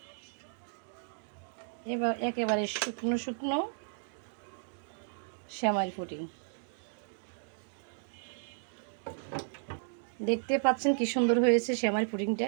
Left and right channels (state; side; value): silent; left; digital silence